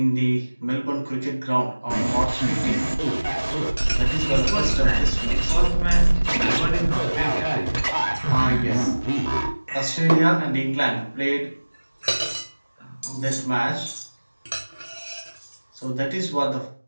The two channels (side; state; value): both; inverted; correlation -1.00